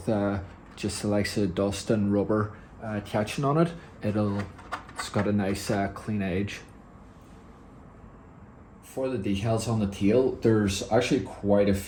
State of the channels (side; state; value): both; identical; correlation 1.00